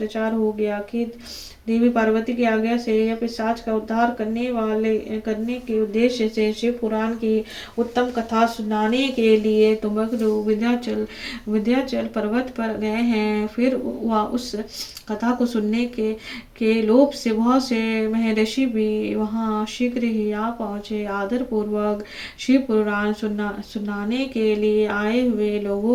हो गया कि देवी पार्वती की आज्ञा से यह पिशाच का उद्धार करने के उद्देश्य से शिव पुराण की उत्तम कथा सुनाने के लिए तुमको विंध्याचल पर्वत पर गए हैं। फिर वह उस कथा को सुनने के लोभ से बहुत से महर्षि भी वहां शीघ्र ही आ पहुंचे। आदर पूर्वक शिव पुराण सुनाने के लिए आए हुए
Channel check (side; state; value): both; identical; correlation 1.00